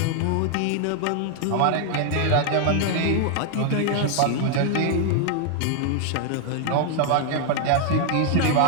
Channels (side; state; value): both; different; correlation 0.00